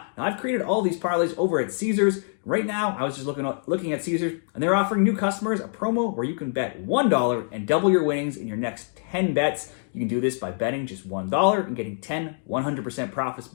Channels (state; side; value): silent; right; digital silence